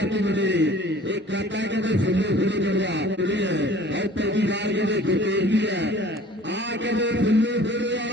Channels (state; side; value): normal; both; correlation 0.48